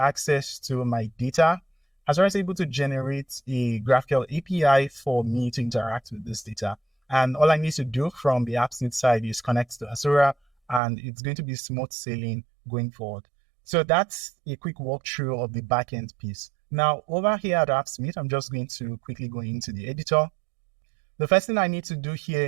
to my data, Hasura is able to generate a GraphQL API for me to interact with this data. And all I need to do from the AppSmith side is connect to Hasura, and it's going to be smooth sailing going forward. So that's a quick walkthrough of the backend piece. Now, over here at AppSmith, I'm just going to quickly go into the editor. The first thing I need to do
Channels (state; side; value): drops out; left; at 10.8 s